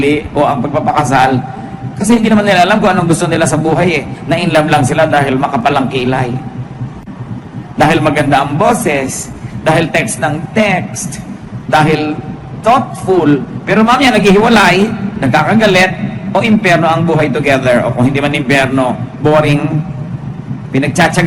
o ang pagpapakasal kasi hindi naman nila alam kung anong gusto nila sa buhay eh. Na-in love lang sila dahil makapalang kilay. Dahil maganda ang boses, dahil text ng text, dahil thoughtful, pero mamaya naghihiwalay, nagkakagalit, o impyerno ang buhay together, o kung hindi man impyerno, boring,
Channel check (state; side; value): identical; both; correlation 1.00